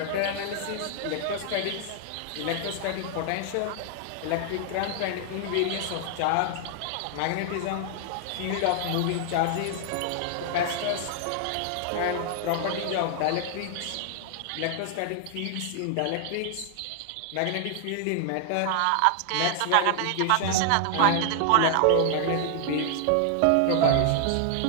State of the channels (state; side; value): different; both; correlation 0.00